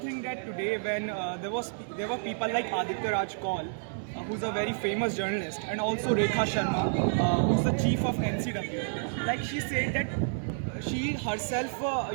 that today when there were people like Aditya Raj Kaul, who's a very famous journalist, and also Rekha Sharma, who's the chief of NCW, like she said that she herself,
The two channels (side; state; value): left; silent; digital silence